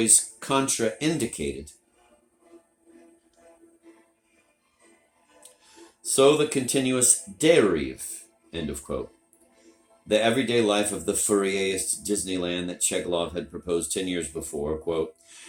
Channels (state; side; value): identical; both; correlation 1.00